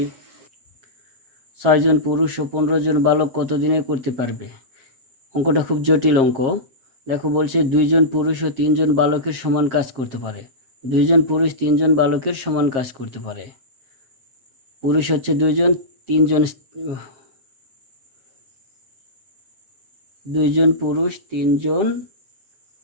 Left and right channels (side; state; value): left; late; 7.5 ms